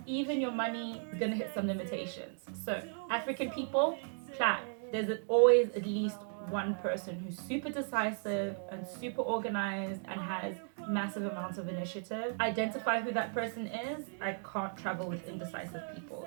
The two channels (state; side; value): silent; left; 54 dB below the other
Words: even your money is gonna hit some limitations. So African people, plan. There's always at least one person who's super decisive and super organized and has massive amounts of initiative. Identify who that person is. I can't travel with indecisive people.